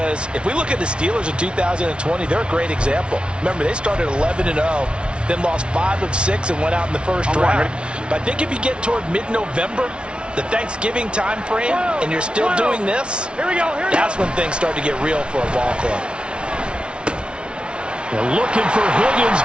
if we look at the Steelers in 2020, they're a great example. Remember, they started 11-0, then lost 5 of 6 and went out in the first round. But I think if you get toward mid-November, the Thanksgiving time frame, and you're still doing this, that's when things start to get real for a ball club. They're looking for Higgins,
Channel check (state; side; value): late; left; 0.057 ms